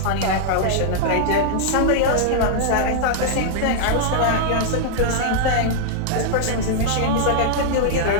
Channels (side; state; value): both; different; correlation -0.01